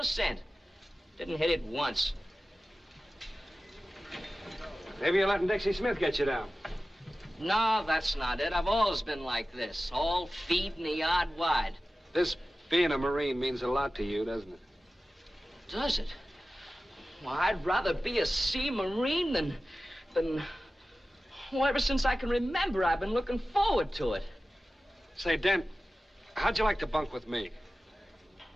Didn't hit it once. Maybe you're letting Dixie Smith get you down. No, that's not it. I've always been like this. All feet in the yard wide. This being a Marine means a lot to you, doesn't it? Does it? Well, I'd rather be a sea Marine than... Well, ever since I can remember, I've been looking forward to it. Say, Dent, how'd you like to bunk with me?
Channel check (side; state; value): both; normal; correlation 0.95